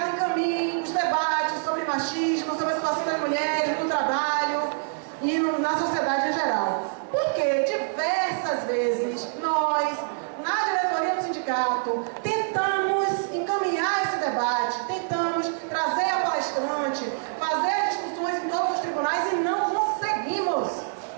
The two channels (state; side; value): silent; left; digital silence